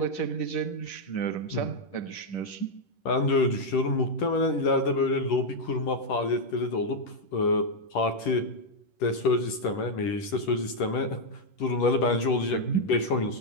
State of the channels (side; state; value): right; late; 10 ms